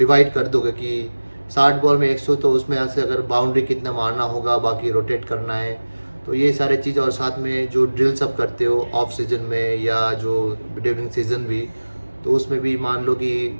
कर दोगे कि 60 बॉल में 100, तो उसमें से अगर बाउंड्री कितना मारना होगा, बाकी रोटेट करना है, तो ये सारे चीज़। और साथ में जो ड्रिल्स आप करते हो ऑफ सीजन में या जो ड्यूरिंग सीजन भी, तो उसमें भी मान लो कि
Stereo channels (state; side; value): inverted; both; correlation -1.00